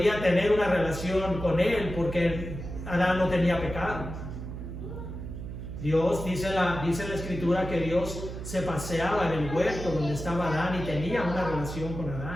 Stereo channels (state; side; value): noise; right; hum, 8 dB below the sound